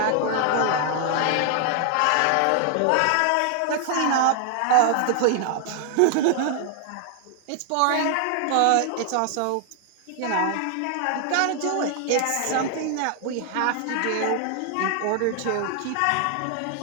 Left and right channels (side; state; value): both; different; correlation 0.00